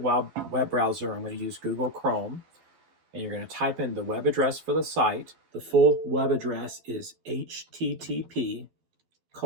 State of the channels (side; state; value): left; late; 12 ms